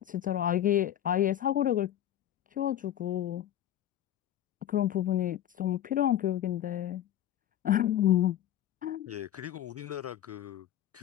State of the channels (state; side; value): quieter; right; 11.6 dB